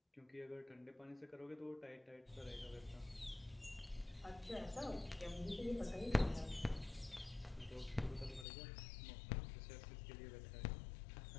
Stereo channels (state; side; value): drops out; right; at 8.5 s